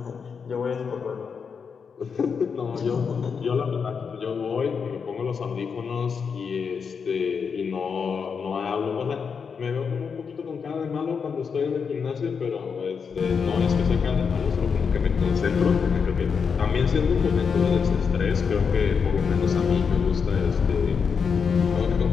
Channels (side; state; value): right; quieter; 6.1 dB